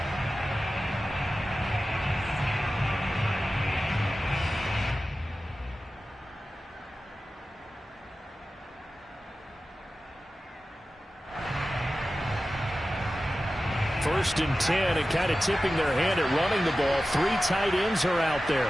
First and 10, and kind of tipping their hand at running the ball. 3 tight ends are out there.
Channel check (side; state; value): both; normal; correlation 0.94